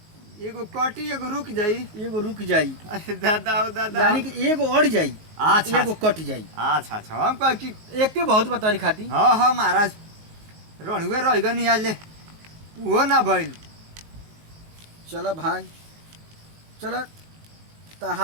एगो कटी एगो रुक जाई एगो रुक जाई अरे दादा हो दादा यानी कि एगो अड़ जाई अच्छा एगो कट जाई। अच्छा हम कह कि एक बहुत बतारी खाती। हाँ महाराज रणुए रह गनी आज ले वो ना भइल। चलो भाई चलो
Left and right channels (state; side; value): late; left; 19 ms